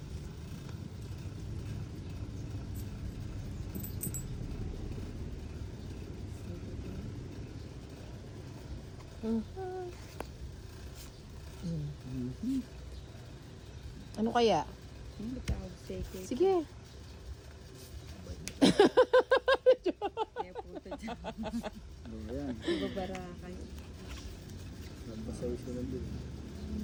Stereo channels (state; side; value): identical; both; correlation 1.00